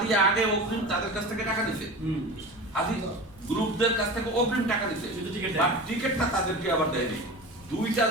দিয়ে আগে অগ্রিম তাদের কাছ থেকে টাকা নিছে, আদি গ্রুপদের কাছ থেকে অগ্রিম টাকা নিছে, টিকিটটা তাদেরকে আবার দেয়নি। দুইটা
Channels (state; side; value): noise; left; rumble, 24 dB below the sound